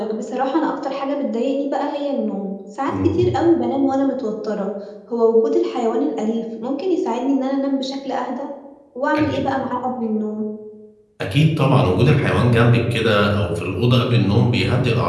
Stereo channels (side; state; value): both; identical; correlation 1.00